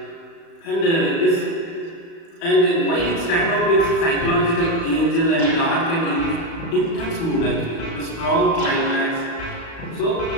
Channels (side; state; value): right; late; 36 ms